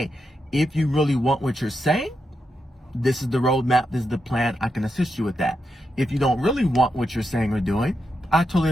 if you really want what you're saying, this is the roadmap, this is the plan, I can assist you with that. If you don't really want what you're saying or doing, I totally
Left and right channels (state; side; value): normal; both; correlation 0.85